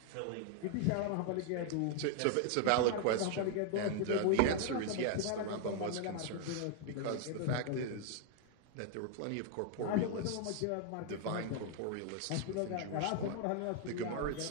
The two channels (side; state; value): both; different; correlation 0.00